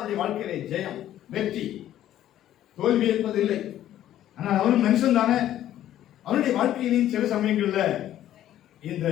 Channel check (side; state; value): right; quieter; 12.3 dB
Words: வாழ்க்கையில ஜெயம், வெற்றி, தோல்வி என்பதில்லை. ஆனால் அவனும் மனுஷன் தானே. அவனுடைய வாழ்க்கையிலும் சில சமயங்கள்ல இந்த